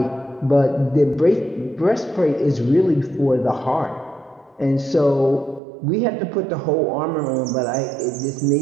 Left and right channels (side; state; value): left; drops out; at 5.6 s